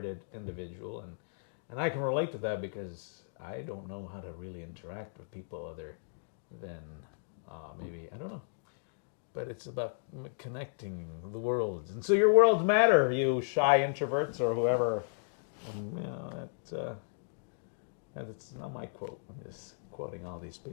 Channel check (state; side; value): silent; right; digital silence